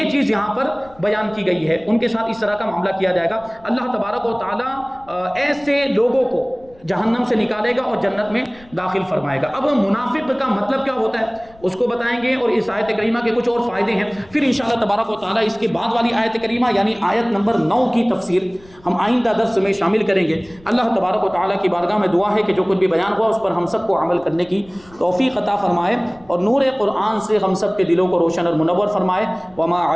چیز یہاں پر بیان کی گئی ہے، ان کے ساتھ اس طرح کا معاملہ کیا جائے گا۔ اللہ تبارک و تعالیٰ ایسے لوگوں کو جہنم سے نکالے گا اور جنت میں داخل فرمائے گا۔ اب منافق کا مطلب کیا ہوتا ہے اس کو بتائیں گے، اور اس آیت کریمہ کے کچھ اور فائدے ہیں، پھر انشاءاللہ تبارک و تعالیٰ اس کے بعد والی آیت کریمہ یعنی آیت نمبر 9 کی تفسیر ہم آئندہ درس میں شامل کریں گے۔ اللہ تبارک و تعالیٰ کی بارگاہ میں دعا ہے کہ جو کچھ بھی بیان ہوا اس پر ہم سب کو عمل کرنے کی توفیق عطا فرمائے، اور نور قرآن سے ہم سب کے دلوں کو روشن اور منور فرمائے۔ وما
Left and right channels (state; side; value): noise; left; rumble, 26 dB below the sound